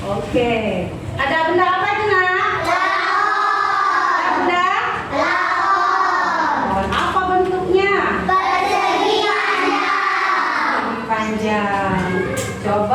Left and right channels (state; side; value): identical; both; correlation 1.00